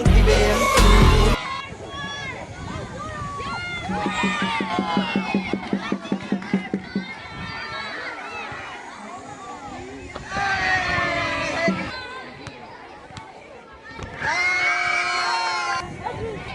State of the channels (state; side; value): identical; both; correlation 1.00